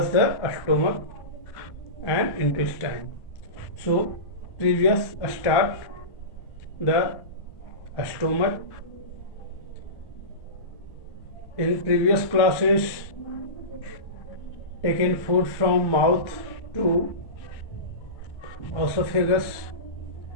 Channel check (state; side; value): late; right; 1.1 ms